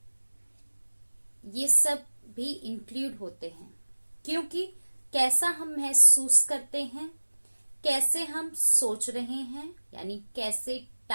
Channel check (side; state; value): both; inverted; correlation -1.00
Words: ये सब भी इंक्लूड होते हैं, क्योंकि कैसा हम महसूस करते हैं, कैसे हम सोच रहे हैं, यानी कैसे